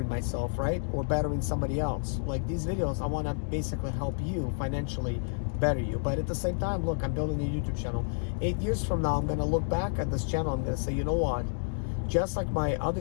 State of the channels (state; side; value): silent; right; 58 dB below the other